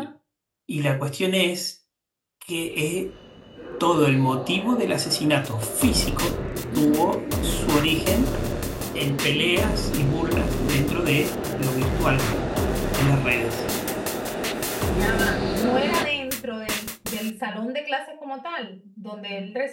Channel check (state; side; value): identical; both; correlation 1.00